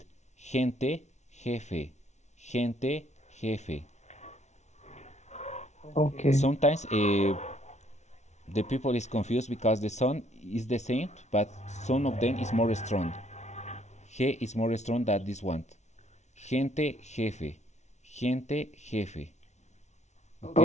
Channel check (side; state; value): right; late; 0.33 ms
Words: Gente, jefe. Gente, jefe. okay. Sometimes the people is confused because the sound is the same, but some of them is more strong. He is more strong than this one. Gente, jefe. Gente, jefe. Okay?